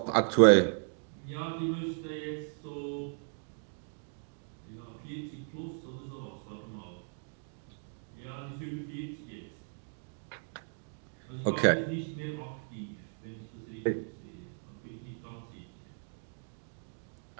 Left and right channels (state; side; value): silent; left; 54 dB below the other